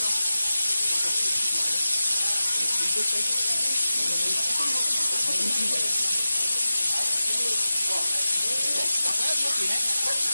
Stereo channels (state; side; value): inverted; both; correlation -0.95